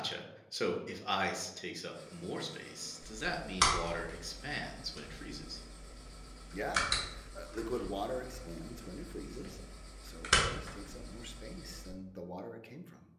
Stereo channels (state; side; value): identical; both; correlation 1.00